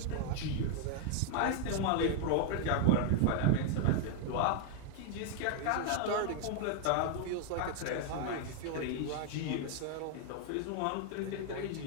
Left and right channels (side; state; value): both; different; correlation 0.00